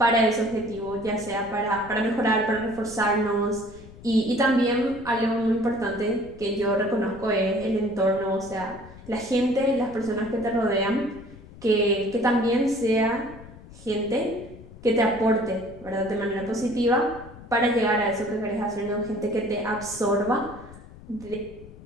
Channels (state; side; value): noise; left; rumble, 18 dB below the sound